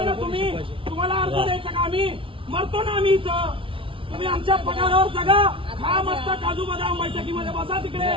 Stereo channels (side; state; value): left; late; 0.25 ms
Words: ना तुम्ही? तुम्हाला अर्ज द्यायचा का? आम्ही मरतो ना आम्ही इथं. तुम्ही आमच्या पगारावर जगा, खा मस्त काजू बदाम, बैठकीमध्ये बसा तिकडे.